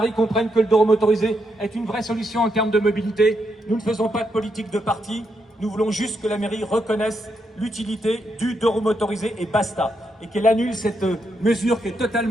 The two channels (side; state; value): both; normal; correlation 0.80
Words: comprenne que le Doro motorisé est une vraie solution en termes de mobilité. Nous ne faisons pas de politique de parti. Nous voulons juste que la mairie reconnaisse l'utilité du Doro motorisé et basta. Et qu'elle annule cette mesure qui est